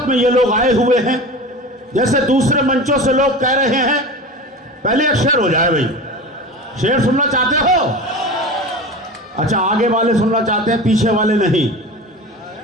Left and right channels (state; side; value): normal; both; correlation 0.31